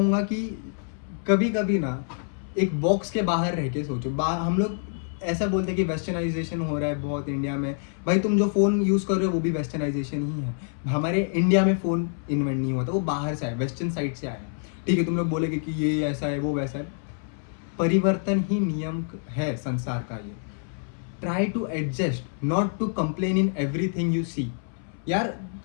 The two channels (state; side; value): silent; right; 61 dB below the other